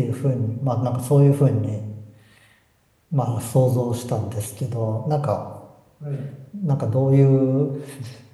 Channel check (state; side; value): identical; both; correlation 1.00